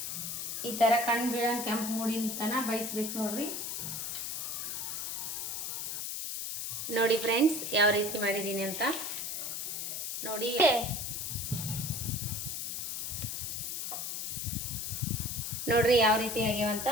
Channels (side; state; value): left; noise; hiss, 3 dB below the sound